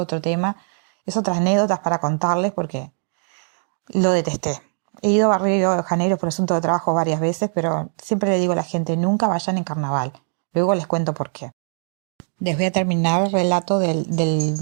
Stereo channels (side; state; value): left; silent; digital silence